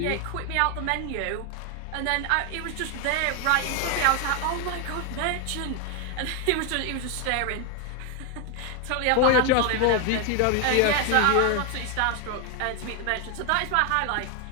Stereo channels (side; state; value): both; different; correlation 0.01